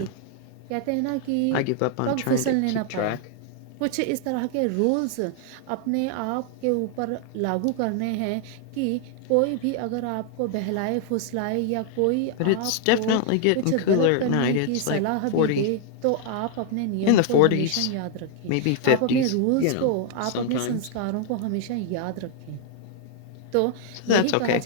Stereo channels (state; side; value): different; both; correlation 0.00